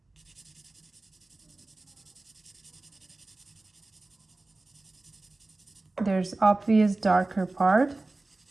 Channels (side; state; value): left; quieter; 3.1 dB